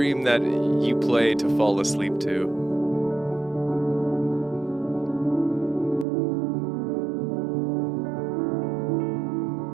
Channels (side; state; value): left; drops out; at 6.1 s